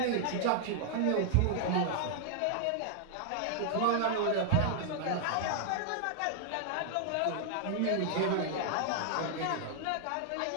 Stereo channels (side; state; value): both; different; correlation 0.00